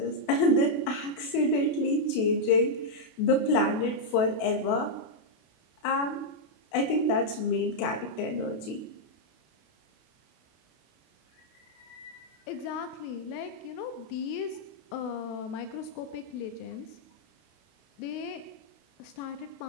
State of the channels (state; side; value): late; right; 32 ms